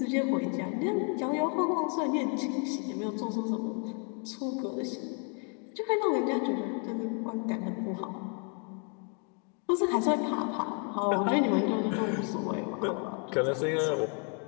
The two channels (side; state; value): right; quieter; 39.2 dB